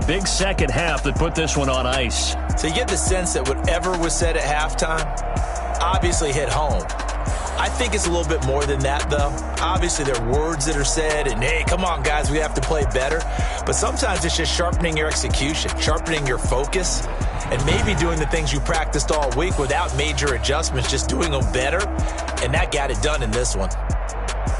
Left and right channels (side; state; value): both; identical; correlation 1.00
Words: second half that put this one on ice. So you get the sense that whatever was said at halftime obviously hit home. I think it's a little bit more than that, though. Obviously, there are words that are said, and, hey, come on, guys, we have to play better. But sometimes it's just sharpening your execution, sharpening your focus, and maybe doing the things you practiced all week without major adjustments, just doing them better, and that got it done in this one.